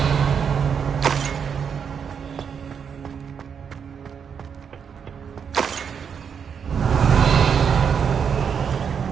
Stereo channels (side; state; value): left; quieter; 7.1 dB